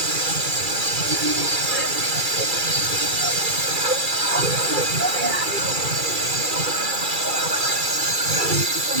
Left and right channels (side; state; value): left; late; 2.3 ms